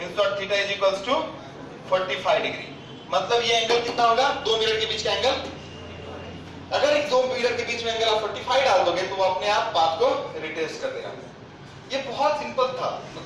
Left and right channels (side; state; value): both; identical; correlation 1.00